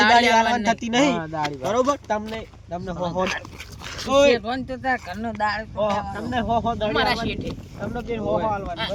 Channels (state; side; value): identical; both; correlation 1.00